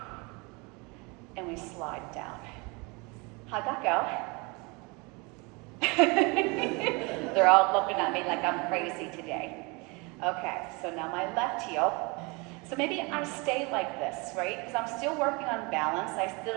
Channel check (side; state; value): left; quieter; 28.4 dB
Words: And we slide down. How'd that go? They're all looking at me like I'm crazy today. Okay, so now my left heel. So maybe I stay like this, right? Because I'm still working on balance. I still